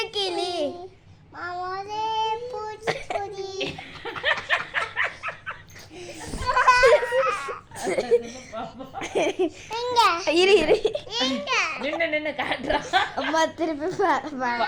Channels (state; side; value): identical; both; correlation 1.00